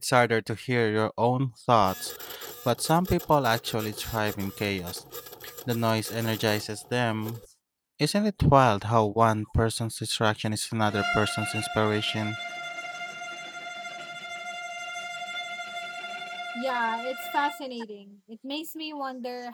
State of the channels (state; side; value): identical; both; correlation 1.00